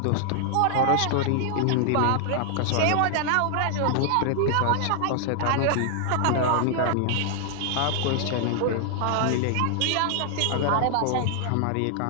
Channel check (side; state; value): both; different; correlation 0.00